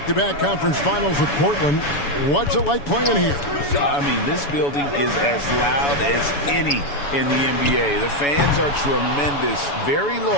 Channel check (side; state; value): right; late; 7.0 ms